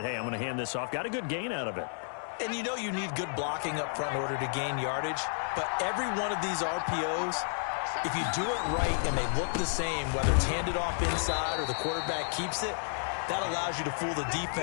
hey, I'm going to hand this off. Got a good gain out of it. And you know you need good blocking up front in order to gain yardage. But every one of these RPOs, if you do it right and they look the same, whether it's handed off inside or the quarterback keeps it, that allows you to fool the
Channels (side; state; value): right; silent; digital silence